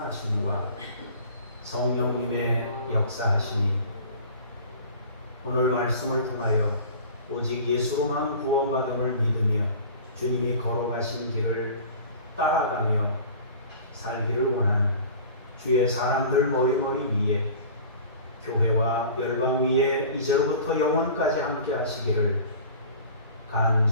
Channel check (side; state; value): both; inverted; correlation -0.42